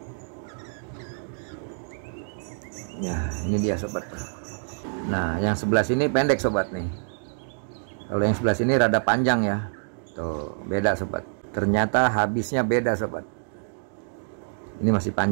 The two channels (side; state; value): left; silent; digital silence